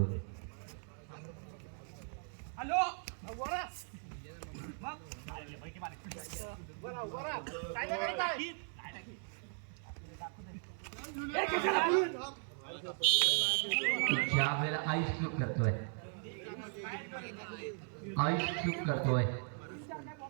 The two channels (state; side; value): silent; left; 52 dB below the other